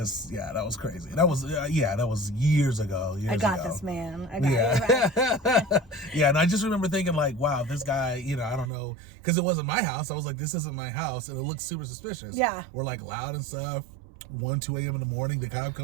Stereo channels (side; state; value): left; drops out; at 8.7 s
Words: yeah, that was crazy. That was, that was years ago. I got this, man. I got it. Yeah, and I just remember thinking, like, wow, this guy, you know, I don't know, because it wasn't my house. I was like, this isn't my house, and it looks super suspicious. Yeah. We're like loud and stuff. 2 a.m. in the morning, the cop